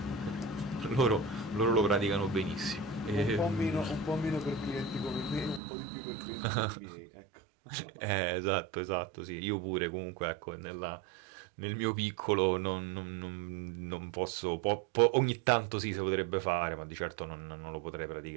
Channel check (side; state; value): left; drops out; at 5.6 s